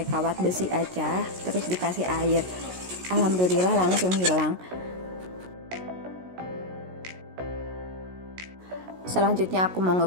kawat besi aja, terus dikasih air. Alhamdulillah langsung hilang. Selanjutnya aku mau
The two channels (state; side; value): late; left; 16 ms